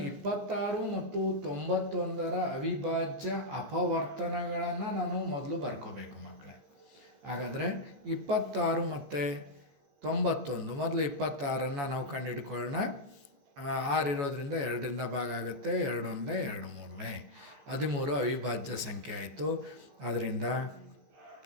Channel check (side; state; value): left; late; 14 ms